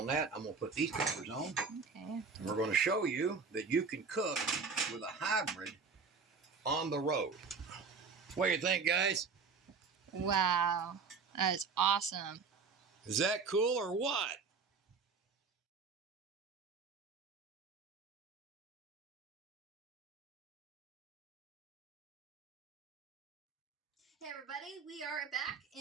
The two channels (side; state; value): left; quieter; 5.0 dB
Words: that. I'm going to put these covers on. Okay. And we're going to show you that you can cook with a hybrid on the road. What do you think, guys? Wow. That is awesome. Is that cool or what? Hey everybody, we are back